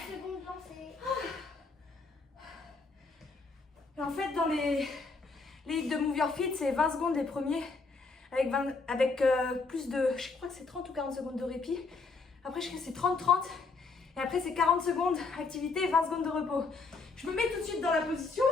secondes lancées. Et en fait, dans les hits de Move Your Feet, c'est 20 secondes les premiers, avec plus de, je crois que c'est 30 ou 40 secondes de répit. Après, je crois que c'est 30-30. Et après, c'est 40 secondes activité et 20 secondes de repos. Je me mets tout de suite dans la position.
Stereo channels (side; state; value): right; quieter; 4.1 dB